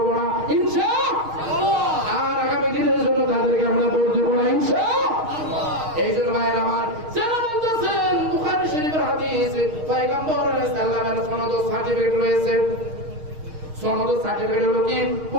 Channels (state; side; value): late; left; 6.4 ms